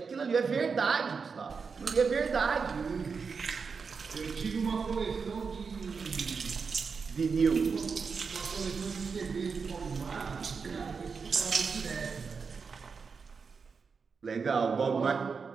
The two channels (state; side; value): quieter; left; 5.3 dB